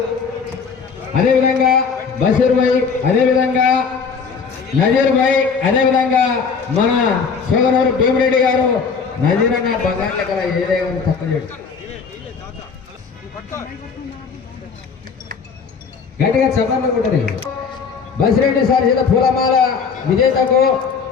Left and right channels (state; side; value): quieter; right; 5.6 dB